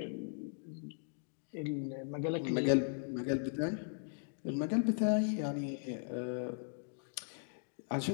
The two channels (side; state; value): right; silent; digital silence